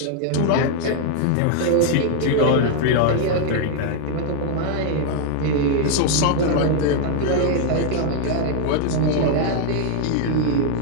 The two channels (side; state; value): both; different; correlation 0.00